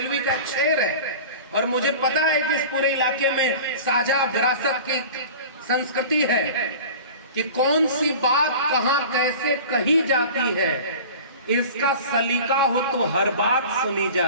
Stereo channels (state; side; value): inverted; both; correlation -0.38